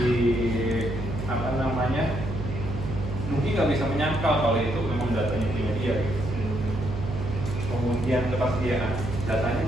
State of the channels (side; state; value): right; noise; hum, 5 dB below the sound